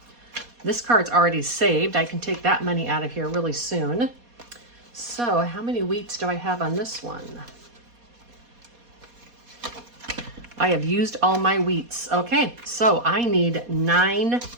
This card's already saved. I can take that money out of here really soon. So how many wheats do I have on this one? I have used all my wheats. Okay, so I need 9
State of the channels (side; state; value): left; late; 4.2 ms